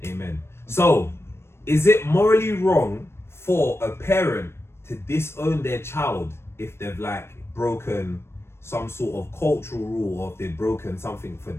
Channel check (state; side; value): late; right; 0.12 ms